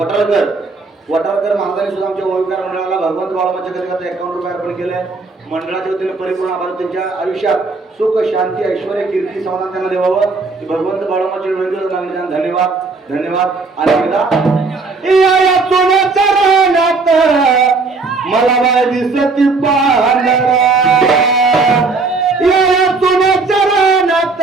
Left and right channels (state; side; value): quieter; left; 4.0 dB